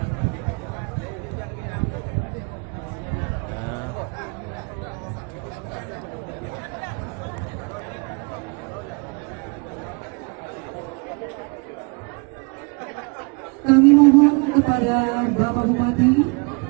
Kami mohon kepada Bapak Bupati,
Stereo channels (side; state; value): left; quieter; 33.4 dB